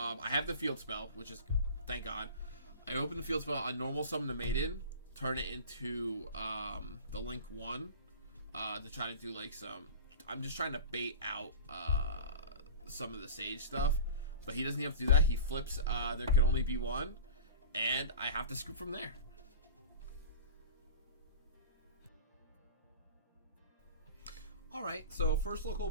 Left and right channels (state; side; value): inverted; both; correlation -0.36